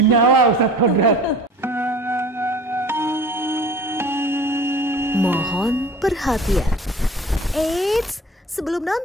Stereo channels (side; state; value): both; normal; correlation 0.43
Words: Ustadz Kodrat. Mohon perhatian. Eits, sebelum